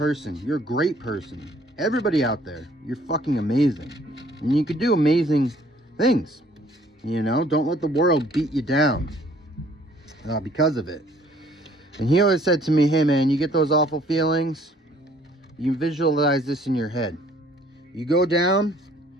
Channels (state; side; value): normal; both; correlation 0.59